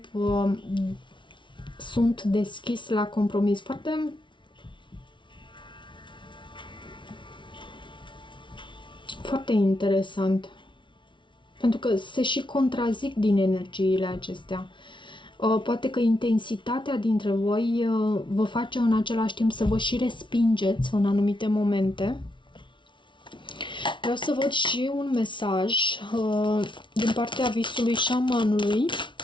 sunt deschis la compromis. Foarte interesant. Pentru că se și contrazic din energiile acestea. Poate că intensitatea dintre voi vă face în același timp să vă și respingeți în anumite momente. Vreau să văd și un mesaj din partea visului șamanului.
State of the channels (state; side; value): late; right; 0.24 ms